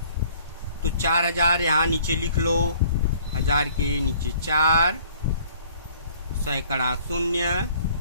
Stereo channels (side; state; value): both; inverted; correlation -0.55